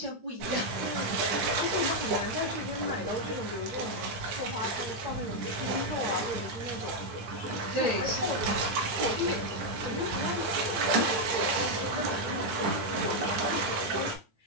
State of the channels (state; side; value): late; left; 9.9 ms